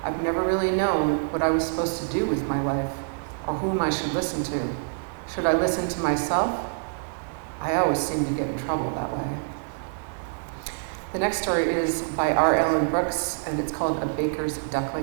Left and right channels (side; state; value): left; silent; digital silence